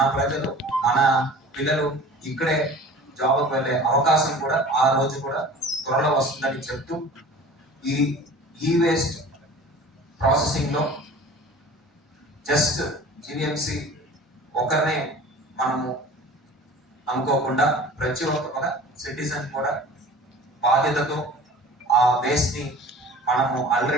ప్రజలు, మన పిల్లలు ఇక్కడే జాబ్కి వెళ్ళే అవకాశం కూడా ఆ రోజు కూడా త్వరలో వస్తుందని చెప్తూ ఈ వేస్ట్ ప్రాసెసింగ్ లో జస్ట్ జీవీఎంసీ ఒకరినే మనము అనుకోకుండా ప్రతి ఒక్క సిటిజన్ కూడా బాధ్యతతో ఆ వేస్ట్ ని మనము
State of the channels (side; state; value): both; normal; correlation 0.43